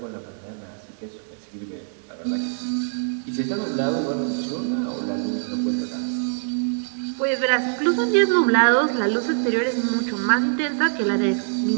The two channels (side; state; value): left; silent; digital silence